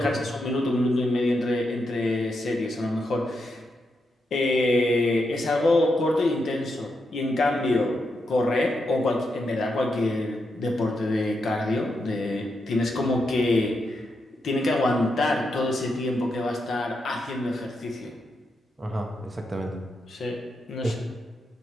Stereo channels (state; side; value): normal; both; correlation 0.84